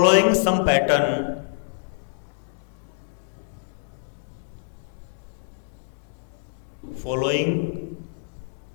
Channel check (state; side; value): silent; right; digital silence